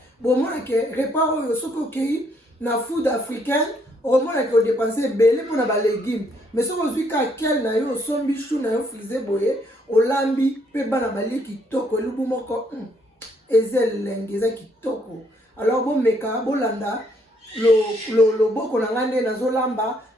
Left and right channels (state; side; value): normal; both; correlation 0.70